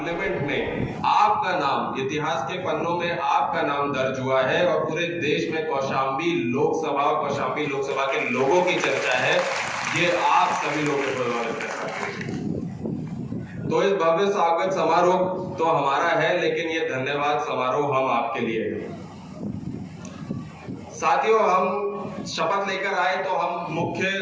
में आपका नाम इतिहास के पन्नों में आपका नाम दर्ज हुआ है और पूरे देश में कौशाम्बी लोकसभा के लोगों की चर्चा है। ये आप सभी लोगों के बदौलत है। तो इस भव्य स्वागत समारोह तो हमारा है, लेकिन ये धन्यवाद समारोह हम आपके लिए है। साथियों, हम शपथ लेकर आए तो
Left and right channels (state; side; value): identical; both; correlation 1.00